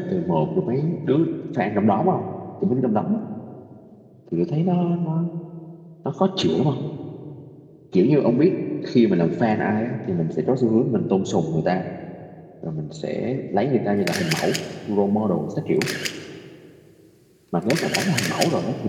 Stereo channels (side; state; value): both; identical; correlation 1.00